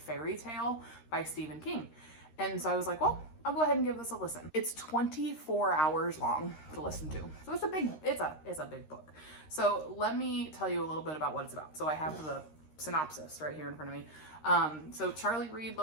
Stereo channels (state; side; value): late; right; 13 ms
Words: Tale by Stephen King. And so I was like, well, I'll go ahead and give this a listen. It's 24 hours long to listen to. So it's a big book. So let me tell you a little bit about what it's about. So I have the synopsis right here in front of me. So Charlie Reed